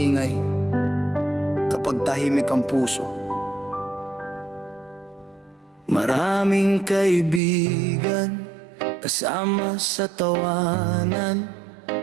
kapag tahimik ang puso. Maraming kaibigan kasama sa tawanan,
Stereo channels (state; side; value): drops out; left; at 7.4 s